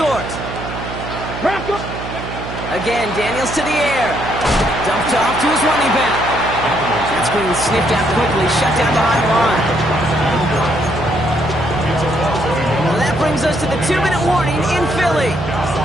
Again, Daniels to the air. Dumped off to his running back. That screen sniffed out quickly, shut down behind the line. Well, that brings us to the 2-minute warning in Philly.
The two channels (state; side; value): noise; right; hum, 8 dB below the sound